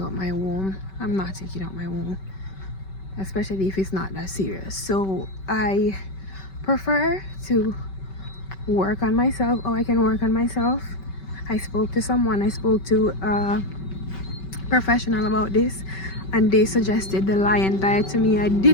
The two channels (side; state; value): right; late; 5.2 ms